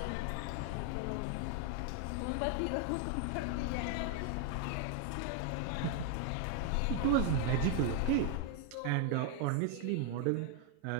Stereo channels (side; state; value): both; different; correlation 0.00